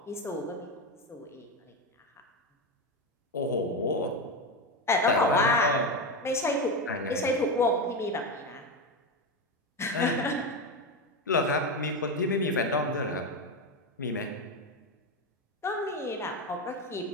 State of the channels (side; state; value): both; normal; correlation 0.15